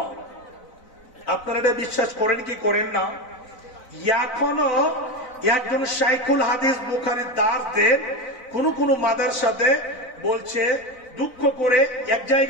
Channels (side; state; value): right; late; 4.0 ms